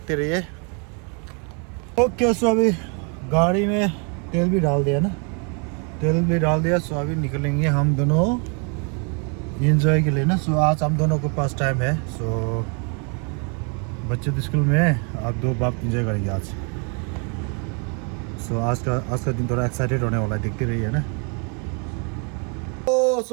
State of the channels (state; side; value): quieter; left; 36.9 dB